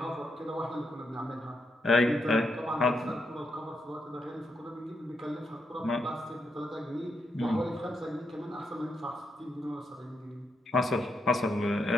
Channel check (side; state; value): both; normal; correlation 0.81